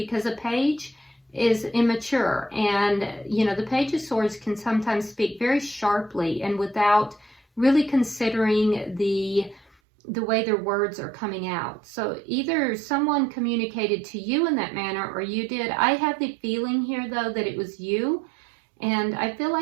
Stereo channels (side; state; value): left; drops out; at 9.7 s